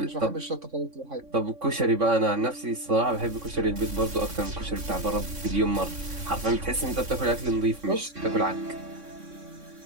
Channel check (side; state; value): left; late; 3.6 ms